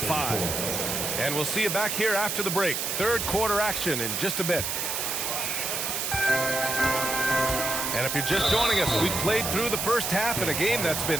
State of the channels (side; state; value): right; noise; hiss, 1 dB below the sound